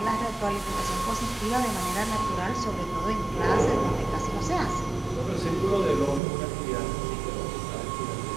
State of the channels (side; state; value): left; drops out; at 6.2 s